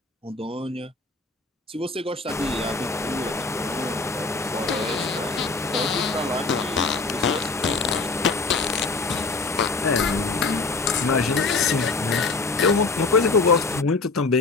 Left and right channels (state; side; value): quieter; right; 3.8 dB